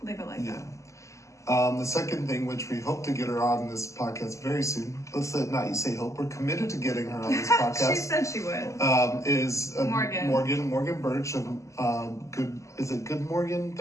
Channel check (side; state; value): right; late; 0.15 ms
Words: leave it like that. The second thing, which we hope to get her on this podcast very soon, let's not you say hope, we're committed to getting her on this podcast. She said she would. Is Morgan Birch of Good Morgan